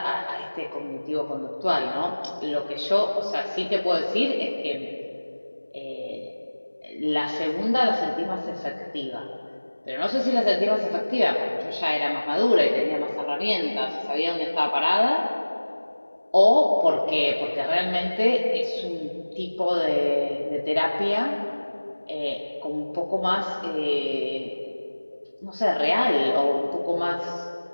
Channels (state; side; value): inverted; both; correlation -1.00